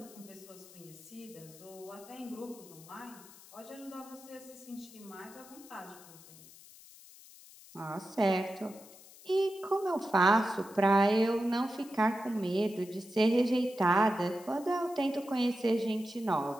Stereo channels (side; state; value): left; noise; hiss, 20 dB below the sound